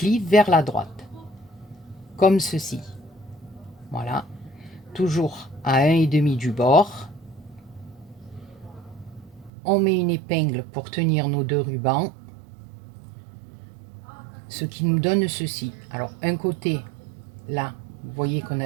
vers la droite, comme ceci. Voilà, toujours à 1,5 du bord. On met une épingle pour tenir nos 2 rubans, ce qui nous donne ceci. Alors, un côté, là, vous voyez qu'on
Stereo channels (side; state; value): left; drops out; at 9.5 s